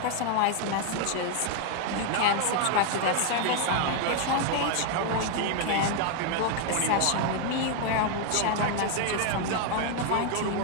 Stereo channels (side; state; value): both; different; correlation 0.00